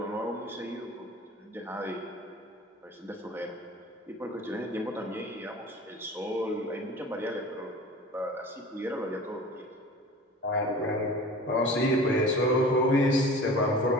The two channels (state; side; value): normal; both; correlation 0.40